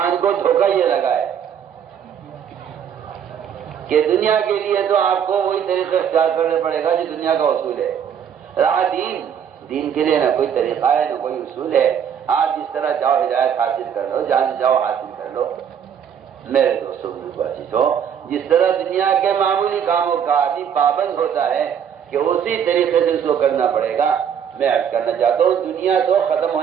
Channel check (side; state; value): left; quieter; 8.3 dB